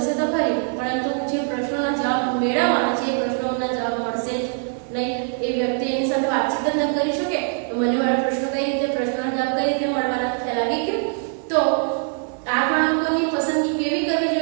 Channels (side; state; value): left; silent; 55 dB below the other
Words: તો ખરી, પરંતુ જે પ્રશ્નોના જવાબ મેળવવાના છે એ પ્રશ્નોના જવાબ મળશે જ નહીં. એ વ્યક્તિ એની સાથે વાતચીત જ ન કરી શકે. તો મને મારા પ્રશ્નો કઈ રીતે, પ્રશ્નોના જવાબ કઈ રીતે મળવાના, ખ્યાલ આવી ગયો. તો આ ગણકોની પસંદગી કેવી કરવી